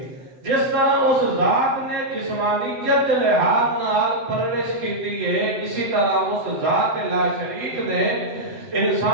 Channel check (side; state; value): left; late; 7.3 ms